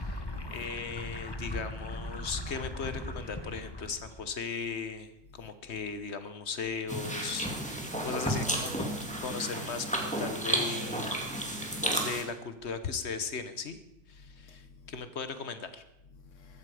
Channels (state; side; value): normal; both; correlation 0.11